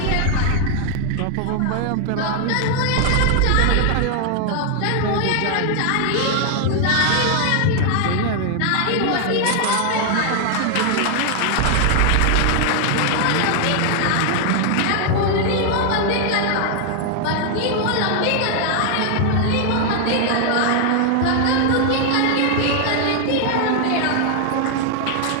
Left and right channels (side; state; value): both; different; correlation 0.00